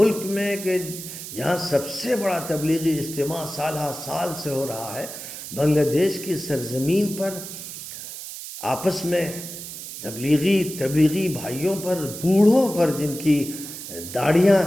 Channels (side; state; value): right; noise; hiss, 10 dB below the sound